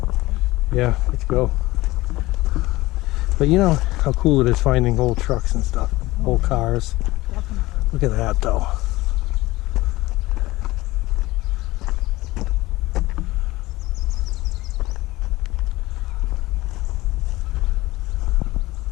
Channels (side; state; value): right; quieter; 19.1 dB